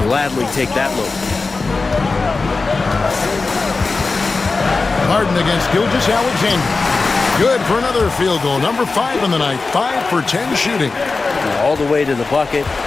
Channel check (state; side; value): quieter; right; 3.9 dB